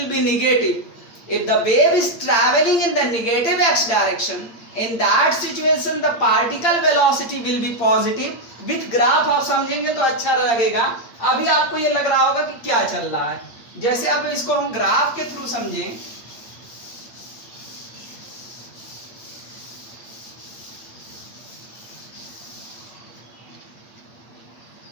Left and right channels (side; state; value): right; late; 8.8 ms